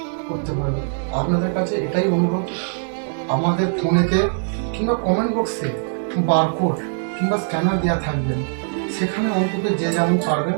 করতে পারবে। আপনাদের কাছে এটাই অনুরোধ, আমাদের ফোনেতে কিংবা কমেন্ট বক্সে বারকোড কিংবা স্ক্যানার দেওয়া থাকবেন, সেখানে অন্তত যে যেমন পারবেন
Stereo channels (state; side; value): silent; left; 65 dB below the other